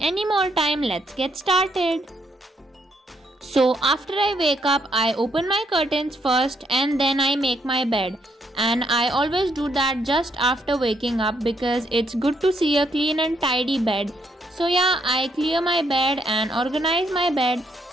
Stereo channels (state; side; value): normal; both; correlation 0.74